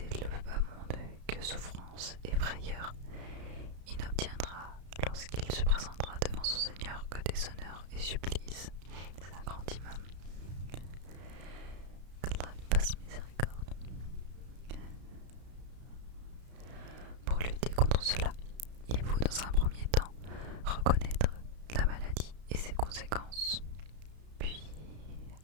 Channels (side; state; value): left; late; 33 ms